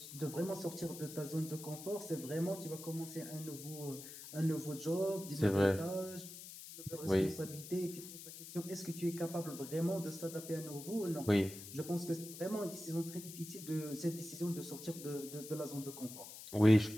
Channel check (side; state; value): left; noise; hiss, 12 dB below the sound